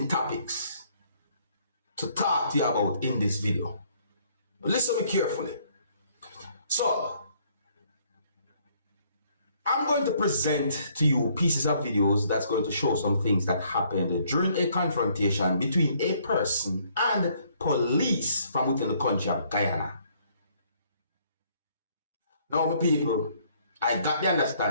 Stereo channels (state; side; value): inverted; both; correlation -0.65